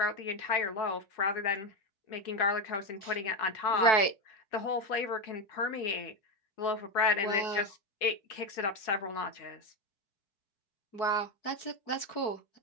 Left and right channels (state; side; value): late; right; 4.6 ms